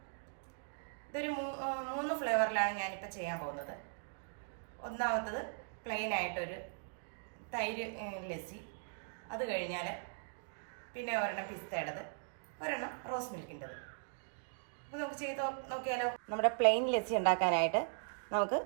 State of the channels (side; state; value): left; silent; digital silence